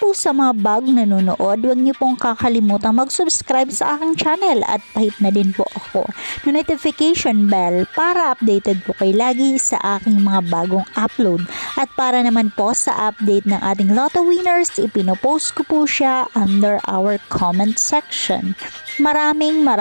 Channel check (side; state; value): both; inverted; correlation -1.00